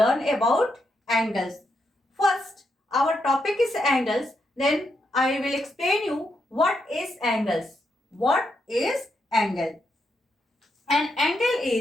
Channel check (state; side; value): normal; both; correlation 0.81